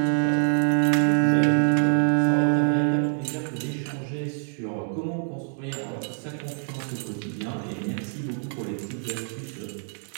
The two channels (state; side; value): silent; left; 61 dB below the other